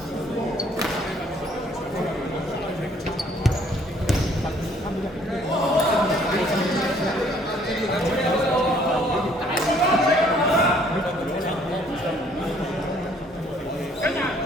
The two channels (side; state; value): both; normal; correlation 0.61